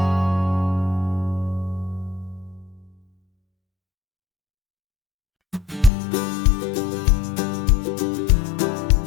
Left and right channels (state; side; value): drops out; right; at 5.9 s